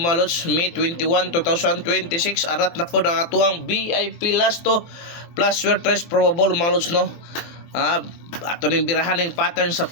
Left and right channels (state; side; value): late; right; 24 ms